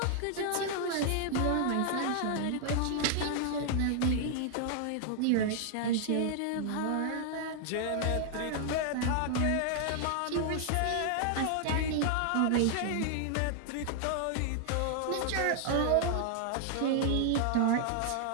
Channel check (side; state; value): both; different; correlation 0.00